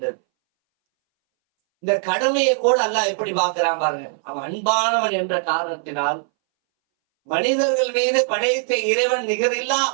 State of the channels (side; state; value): left; silent; 63 dB below the other